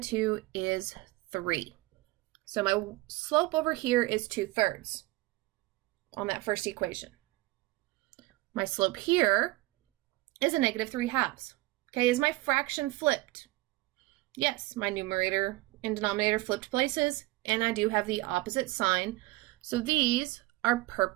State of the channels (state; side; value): quieter; left; 20.0 dB